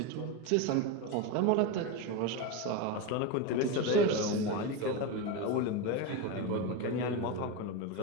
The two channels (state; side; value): different; both; correlation 0.06